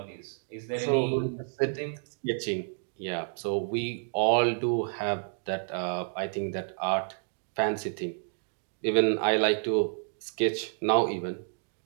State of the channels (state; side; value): silent; left; digital silence